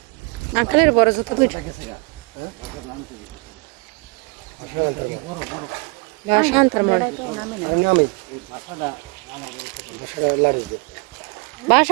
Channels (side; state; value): left; quieter; 30.9 dB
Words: আঙ্কেলের বড় জুতো দুইটা ভাষা আনতার মনে